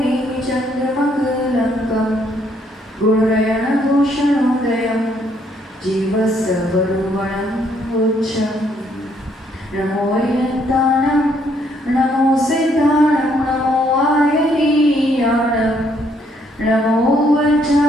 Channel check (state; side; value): normal; both; correlation 0.69